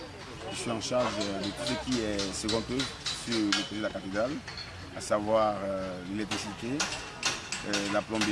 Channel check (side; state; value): both; identical; correlation 1.00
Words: Je suis en charge de tout ce qui est second œuvre sur le projet de la cathédrale, à savoir l'électricité, la